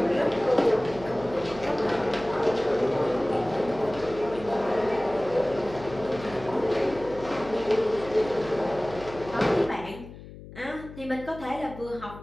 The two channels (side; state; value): left; noise; hum, 15 dB below the sound